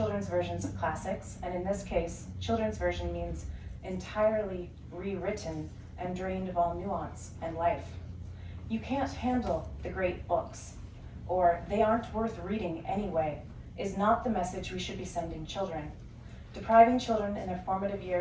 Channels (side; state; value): both; identical; correlation 1.00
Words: versions of classics, and in this case, children's version means entirely rewritten and drained of all nuance and life. You can't handle the great books, or they aren't worth reading anyway, is not the message we should be sending children. Depriving children in their formative